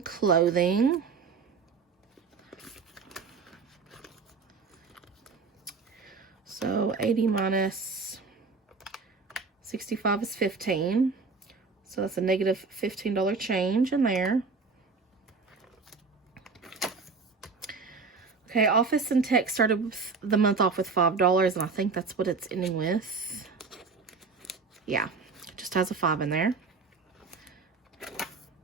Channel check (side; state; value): left; quieter; 4.7 dB